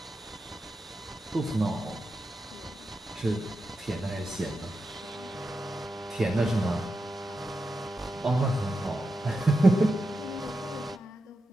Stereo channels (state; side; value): normal; both; correlation 0.89